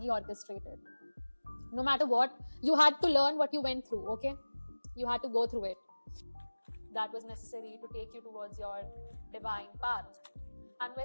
orchestrated. No matter what, you had to learn what you went through, okay? You had to go through it. That was necessary to take you towards your divine path. And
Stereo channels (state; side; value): inverted; both; correlation -1.00